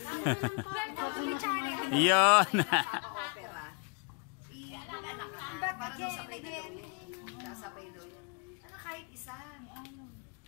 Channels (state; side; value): quieter; right; 33.9 dB